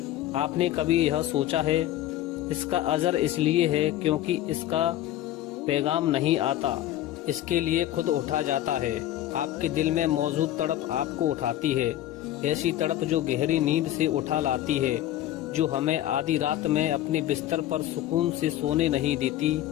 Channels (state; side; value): quieter; right; 13.4 dB